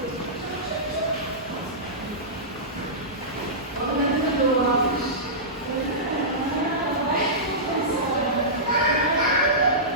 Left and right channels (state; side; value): normal; both; correlation -0.17